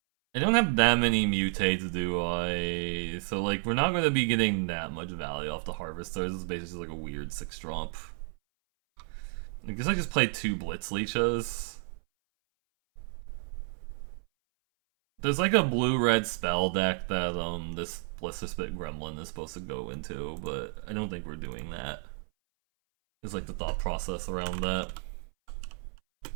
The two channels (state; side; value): silent; left; 57 dB below the other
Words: I don't have that many mutates, do I? So, like, we're not going to be getting that much value off the Harvesters. It's basically like a weird 6-drop. I guess I just played 2 Blitz Leeches. There's like a blue-red spell deck that this Blister Spit Gremlin is supposed to go into, but I don't think we're doing that. It's like the thought process around that.